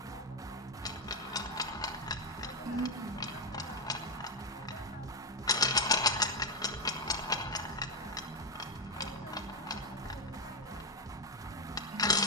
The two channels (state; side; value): normal; both; correlation 0.08